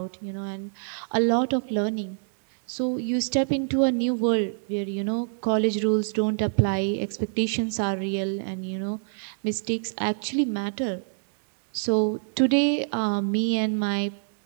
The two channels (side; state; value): left; silent; digital silence